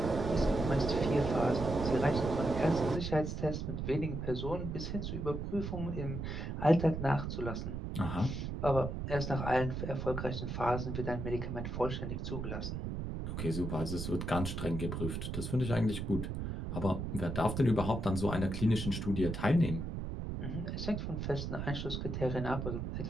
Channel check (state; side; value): noise; right; rumble, 4 dB below the sound